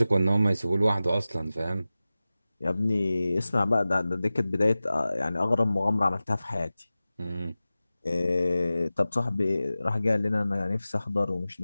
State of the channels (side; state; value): both; inverted; correlation -0.96